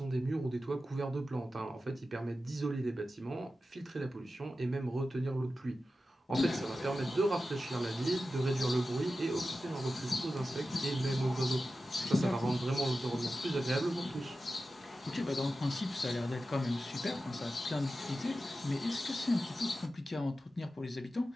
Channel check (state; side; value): normal; both; correlation 0.93